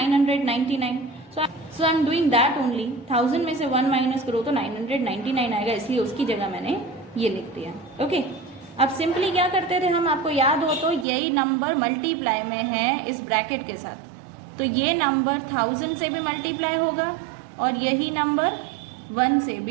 So I am doing that only. 1000 में से 1 माइनस करो तो 999 आएगा, इसलिए उसकी जगह मैंने ये लिख दिया। ओके, अब सिंपली क्या करते थे हम, आपको याद हो तो यही नंबर मल्टीप्लाई में है इस ब्रैकेट के साथ, तो ये नंबर 1000 से भी मल्टीप्लाई होगा और यही नंबर 1 से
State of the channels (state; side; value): drops out; left; at 11.1 s